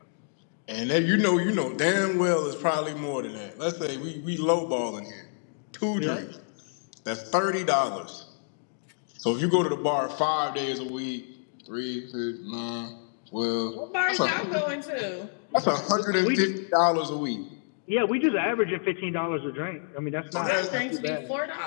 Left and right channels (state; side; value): silent; right; digital silence